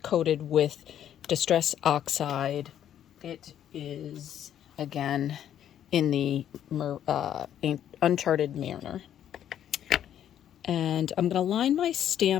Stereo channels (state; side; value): quieter; right; 10.3 dB